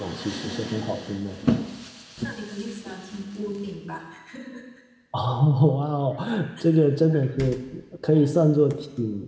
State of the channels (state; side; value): identical; both; correlation 1.00